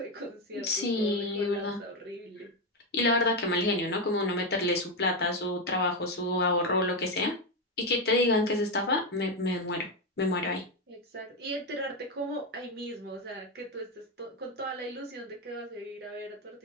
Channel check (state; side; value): normal; both; correlation 0.08